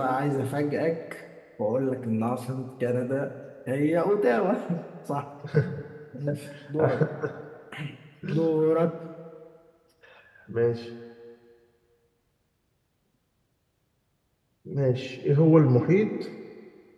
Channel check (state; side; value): identical; both; correlation 1.00